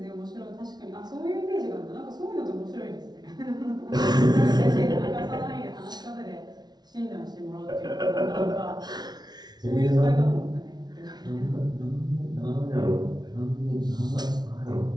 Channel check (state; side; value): late; left; 0.19 ms